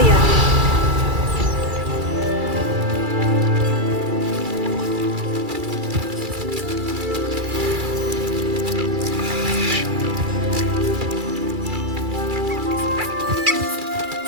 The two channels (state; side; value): late; left; 2.3 ms